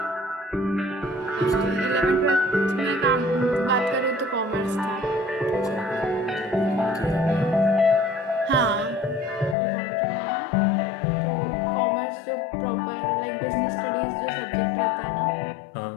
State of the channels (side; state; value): right; drops out; at 9.6 s